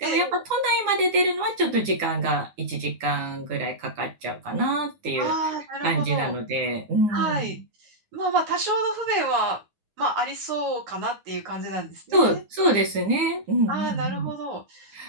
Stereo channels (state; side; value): late; left; 9.9 ms